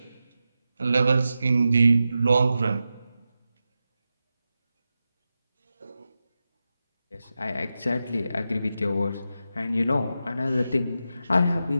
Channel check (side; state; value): both; inverted; correlation -0.91